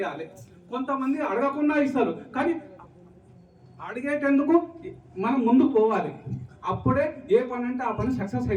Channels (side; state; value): both; identical; correlation 1.00